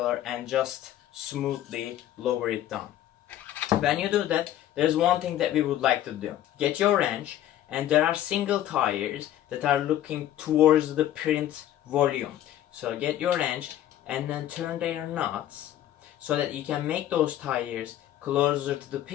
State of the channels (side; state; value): right; quieter; 12.4 dB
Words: and just smoothly lower it down. When you do that, there's one thing that we would like to do. Get your wrench, and there are single tires that are looking towards the print volume. So get your wrench and then turn their nuts so that you can make those tires closer to the